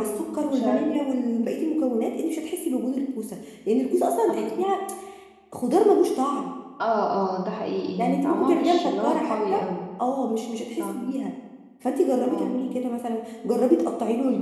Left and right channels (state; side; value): identical; both; correlation 1.00